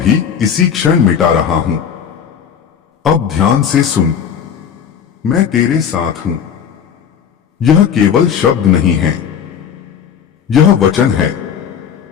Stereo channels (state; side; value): quieter; right; 7.8 dB